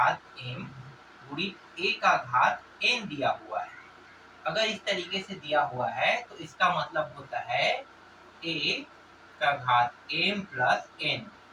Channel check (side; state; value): both; identical; correlation 1.00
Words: m गुणित a का घात n दिया हुआ है। अगर इस तरीके से दिया हुआ है तो इसका मतलब होता है a का घात m प्लस n।